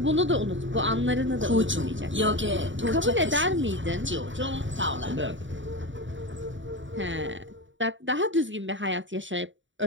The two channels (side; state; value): left; late; 0.55 ms